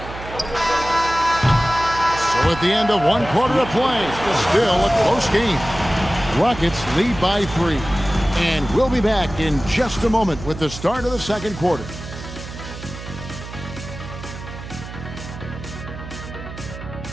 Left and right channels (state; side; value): noise; right; hum, 12 dB below the sound